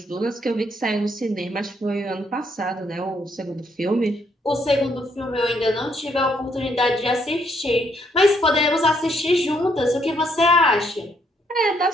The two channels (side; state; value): both; normal; correlation 0.72